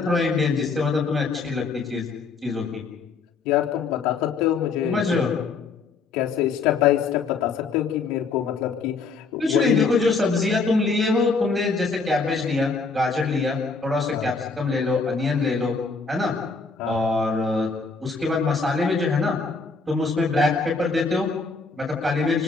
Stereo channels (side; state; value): right; quieter; 4.4 dB